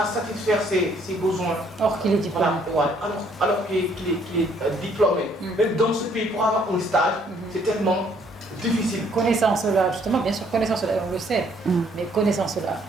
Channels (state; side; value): normal; both; correlation 0.65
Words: satisfaire ses besoins. Or qu'il est diplômé. Voilà, alors qu'il est diplômé. Même dans ce pays, pour avoir un stage, c'est tellement difficile. Connaissant cela, justement, bien sûr, connaissant cela, on le sait, mais connaissant cela,